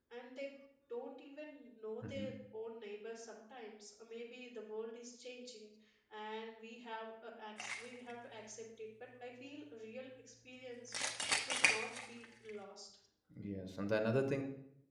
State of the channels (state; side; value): identical; both; correlation 1.00